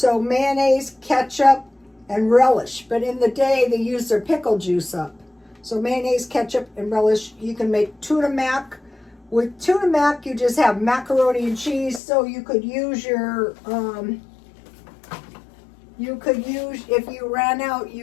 mayonnaise, ketchup, and relish. But in the day, they use their pickle juice up. So mayonnaise, ketchup, and relish. You can make tuna mac. With tuna mac, you just have macaroni and cheese. So you could use your, if you ran out,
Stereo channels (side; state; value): right; drops out; at 12.0 s